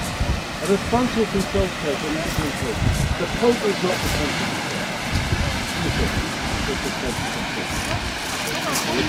And as Francis himself said in his book, the Pope is not the Pope. And the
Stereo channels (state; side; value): identical; both; correlation 1.00